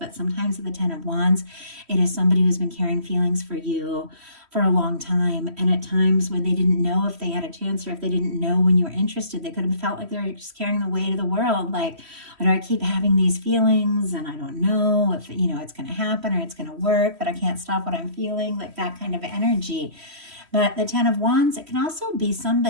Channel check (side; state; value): left; late; 3.1 ms